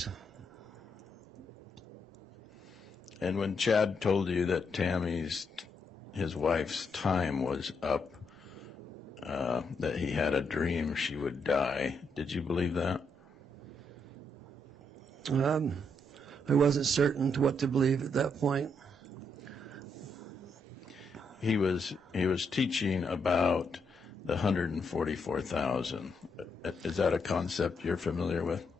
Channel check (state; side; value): normal; both; correlation 0.78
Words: And when Chad told you that his wife's time was up, that he had a dream she would die, did you believe that? I wasn't certain to what to believe at that point. He was teaching about the 144,000. Is that a concept you're familiar with?